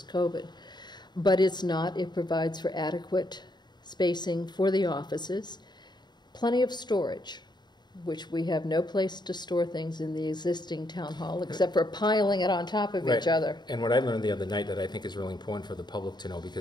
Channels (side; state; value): right; late; 0.21 ms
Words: COVID. But it's not. It provides for adequate spacing for the offices, plenty of storage, which we have no place to store things in the existing town hall except for piling it on top of each other. And what I learned the other night that I think is really important for the public to know,